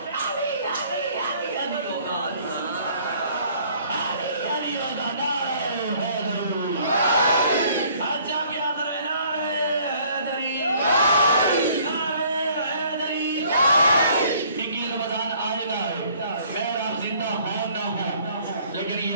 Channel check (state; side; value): inverted; both; correlation -0.58